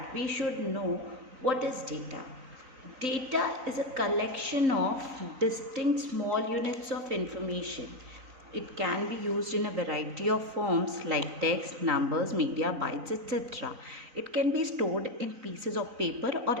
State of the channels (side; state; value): left; late; 3.9 ms